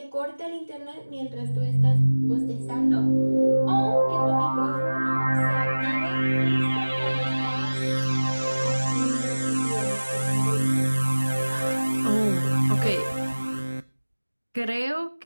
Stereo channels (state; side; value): inverted; both; correlation -1.00